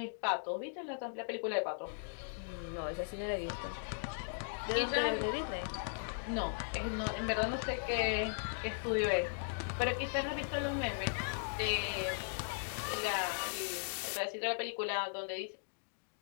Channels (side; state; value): right; silent; digital silence